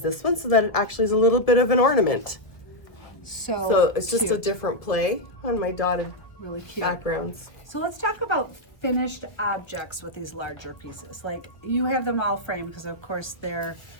this one so that it actually is a little bit of an ornament. So it's just a cute. different play on my dotted Really cute. backgrounds. So let's talk about finished objects with these larger pieces. Like you have them all framed because of course they're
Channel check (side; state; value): right; late; 1.4 ms